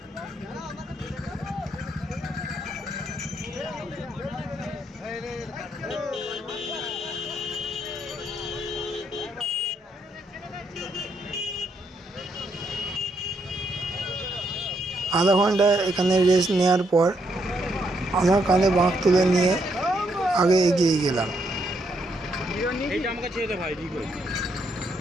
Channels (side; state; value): both; normal; correlation 0.75